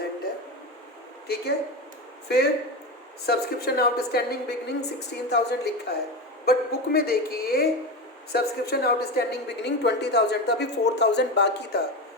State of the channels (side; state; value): both; normal; correlation 0.20